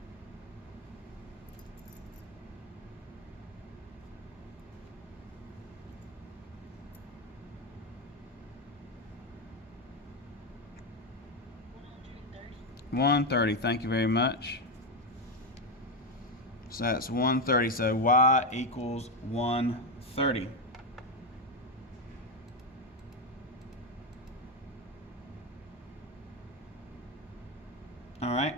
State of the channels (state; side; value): normal; both; correlation 0.08